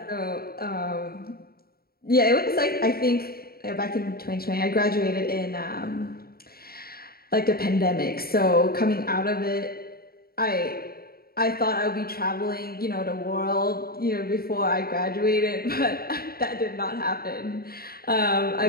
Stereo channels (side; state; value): right; late; 0.44 ms